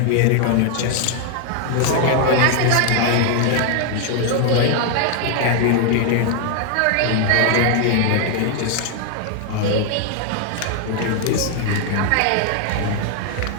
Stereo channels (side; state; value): both; different; correlation 0.00